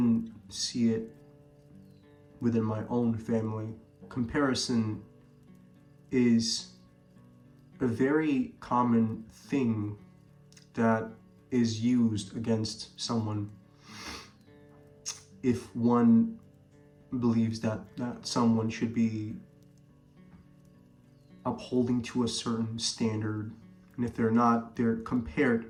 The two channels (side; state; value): both; identical; correlation 1.00